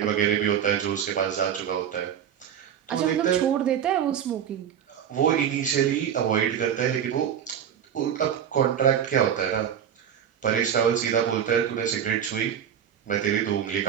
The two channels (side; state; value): left; quieter; 8.9 dB